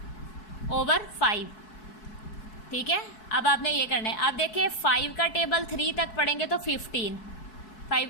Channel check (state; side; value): late; right; 4.7 ms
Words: ठीक है। अब आपने ये करना है। अब देखिए 5 का टेबल 3 तक पढ़ेंगे तो 15, 5